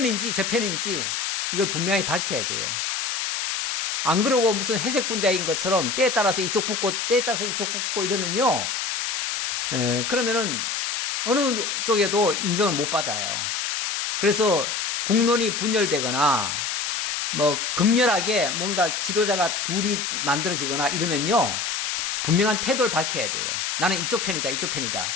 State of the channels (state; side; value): noise; left; hiss, 2 dB below the sound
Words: 저 편인지 이걸 분명히 밝혀야 돼요. 안 그러고 무슨 회색 분자인 것처럼 때에 따라서 이쪽 붙고 때에 따라서 이쪽 붙고 이러면요, 그러면은 어느 쪽에도 인정을 못 받아요. 그래서 국론이 분열되거나 뭐 극렬하게 뭔가 지도자가 둘이 만들어지거나 이러면요, 분명한 태도를 밝혀야 돼요. 나는 이쪽 편이다, 이쪽